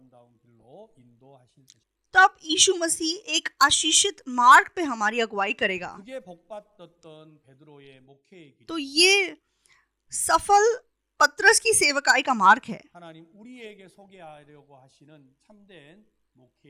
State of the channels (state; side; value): identical; both; correlation 1.00